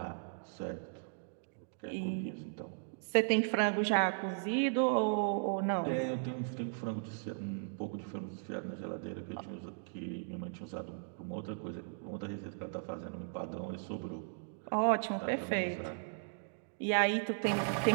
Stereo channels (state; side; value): silent; left; digital silence